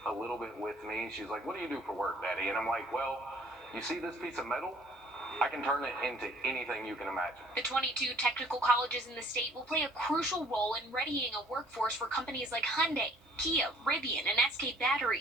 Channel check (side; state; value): both; normal; correlation 0.56